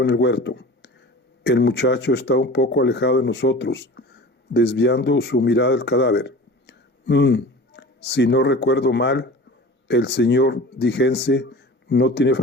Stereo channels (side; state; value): both; normal; correlation 0.38